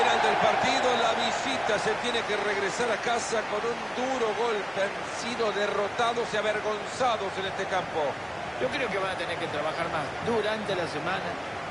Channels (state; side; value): identical; both; correlation 1.00